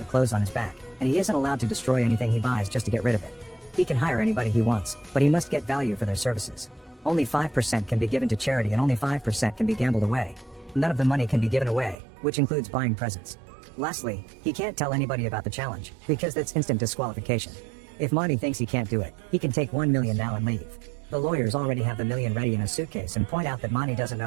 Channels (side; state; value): left; drops out; at 12.0 s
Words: clothes on his back, and he isn't allowed to destroy anything he buys just to get rid of it. He can hire anybody he wants, but he must get value for their services. Only 5% can be given to charity and only 5% can be gambled away. None of the money can be given away, which includes buying presents. Lastly, he can't tell anybody about the challenge, because that's instant disqualification. If Monty thinks he can't do it, he can take $1 million now and leave. The lawyers already have the $1 million ready in a suitcase and point out that Monty doesn't